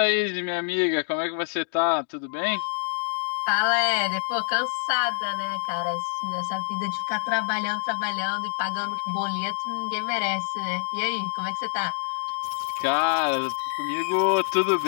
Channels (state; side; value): silent; right; digital silence